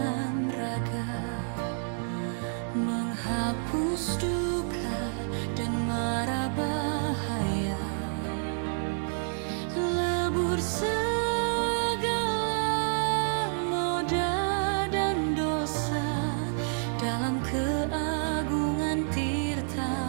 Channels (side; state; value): left; silent; 59 dB below the other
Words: raga, menghapus duka dan mara bahaya. menebur segala noda dan dosa dalam keagungan